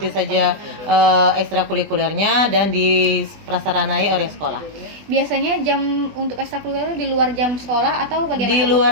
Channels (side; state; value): left; late; 20 ms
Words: saja ekstrakurikulernya dan diprasaranai oleh sekolah. Biasanya jam untuk ekstrakurikuler di luar jam sekolah atau bagaimana? Di luar